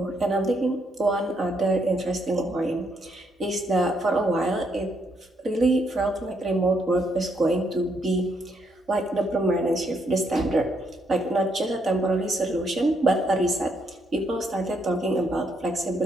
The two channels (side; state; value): both; normal; correlation 0.75